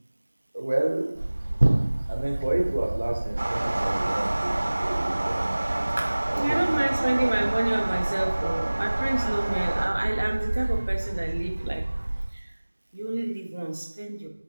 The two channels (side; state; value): both; inverted; correlation -1.00